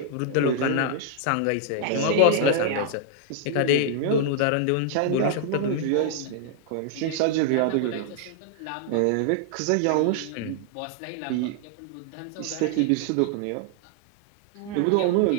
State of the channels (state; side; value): different; both; correlation 0.00